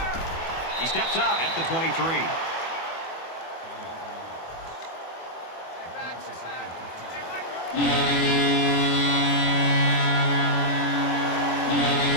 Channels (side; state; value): right; late; 24 ms